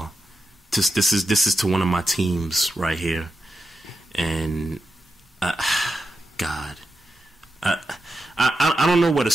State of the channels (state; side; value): normal; both; correlation 0.88